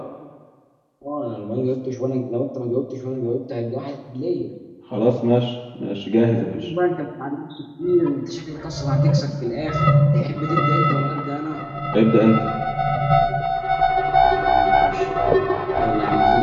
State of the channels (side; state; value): both; identical; correlation 1.00